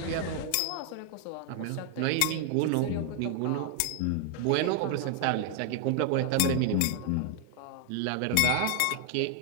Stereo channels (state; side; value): different; both; correlation 0.00